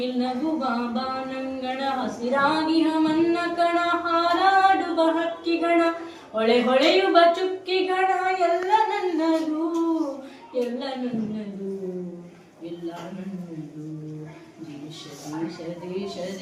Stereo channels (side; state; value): both; identical; correlation 1.00